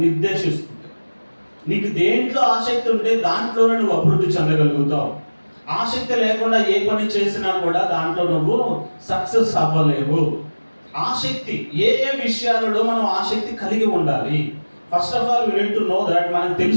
నిర్దేశిస్తుంది. నీకు దేంట్లో ఆసక్తి ఉంటే దాంట్లోనే నువ్వు అభివృద్ధి చెందగలుగుతావు. ఆసక్తి లేకుండా ఏ పని చేసినా కూడా దాంట్లో నువ్వు సక్సెస్ అవ్వలేవు. ఆసక్తి ఏ ఏ విషయాలలో మనం ఆసక్తి కలిగి ఉండాలి? First of all we need to know that. మనం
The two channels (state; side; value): inverted; both; correlation -1.00